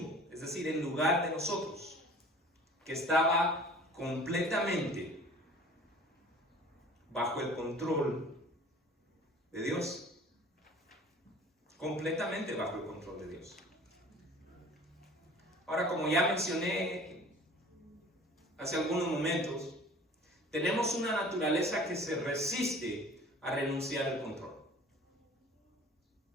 es decir, en lugar de nosotros, que estaba completamente bajo el control de Dios. Completamente bajo el control de Dios. Ahora, como ya mencioné hace algunos momentos, tenemos una naturaleza que se resiste a renunciar al control.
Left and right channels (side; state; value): both; normal; correlation 0.46